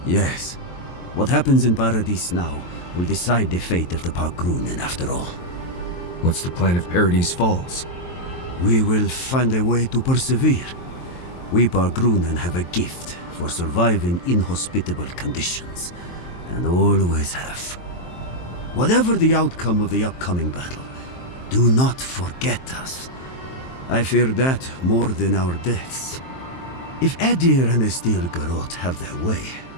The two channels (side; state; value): right; late; 23 ms